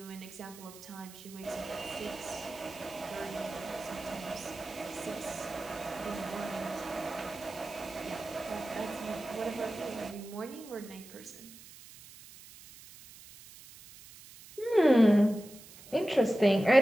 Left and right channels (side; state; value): right; noise; hiss, 19 dB below the sound